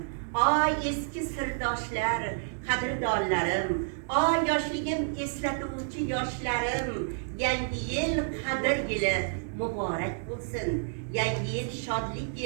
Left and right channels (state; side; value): silent; left; digital silence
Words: eski sirdoshlar, qadrdonlarim, yoshligim eslatuvchi yoshlarim. Yangi yil qadr yili muborak bo'lsin. Yangi yil shodlik